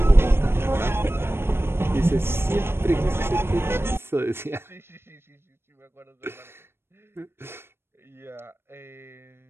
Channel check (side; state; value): left; late; 0.12 ms